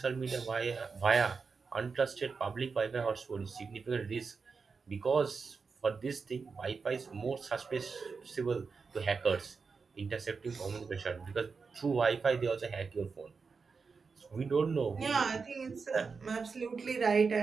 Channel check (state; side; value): quieter; left; 5.0 dB